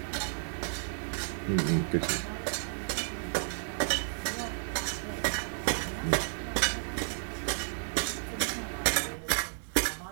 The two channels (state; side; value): silent; left; digital silence